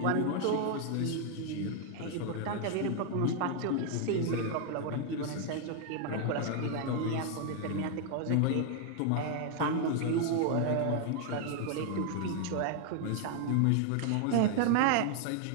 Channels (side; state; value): both; different; correlation 0.00